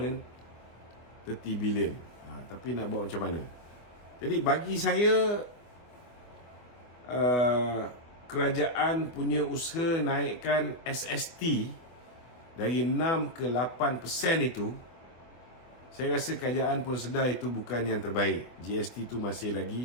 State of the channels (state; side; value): late; right; 24 ms